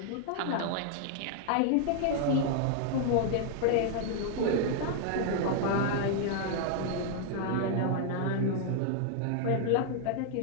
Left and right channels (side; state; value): both; different; correlation 0.00